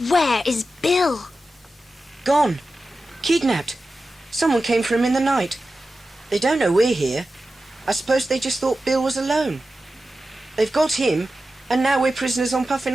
where is Bill? Gone. Kidnapped. Someone came for him in the night. They don't know we're here. I suppose they just thought Bill was alone. They've got him, and now we're prisoners on Puffin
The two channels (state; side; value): normal; both; correlation 0.93